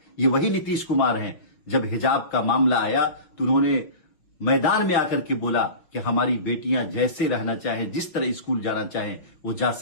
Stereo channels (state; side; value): late; right; 5.9 ms